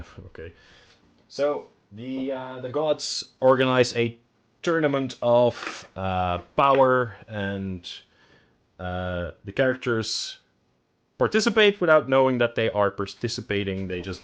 Okay. So, the gods organize a tournament of power, and the characters participate without knowing that they are participating, they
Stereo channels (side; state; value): both; identical; correlation 1.00